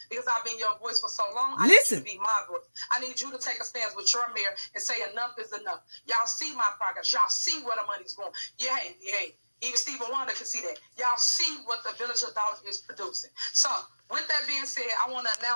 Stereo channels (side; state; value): both; inverted; correlation -1.00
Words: because I've been your voice for so long. I need you to be my voice. I need you to take a stance with your mayor and say enough is enough. Y'all see my progress. Y'all see where the money's going. Yeah, hey. Even Stephen Wonder can see that. Y'all see what the Village of Doubt is producing. So, with that being said, I want to